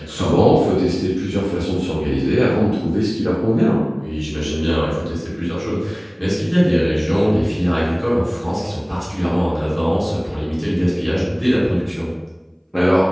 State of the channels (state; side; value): identical; both; correlation 1.00